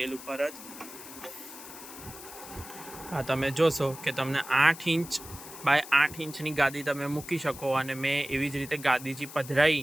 ઉપર જ। આ તમે જોશો કે તમને 8 ઇંચ બાય 8 ઇંચની ગાદી તમે મૂકી શકો। અને મેં એવી જ રીતે ગાદીજી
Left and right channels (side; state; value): left; noise; hiss, 14 dB below the sound